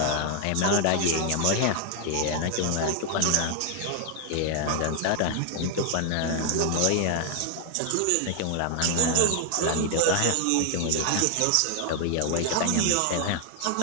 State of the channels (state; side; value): different; both; correlation 0.00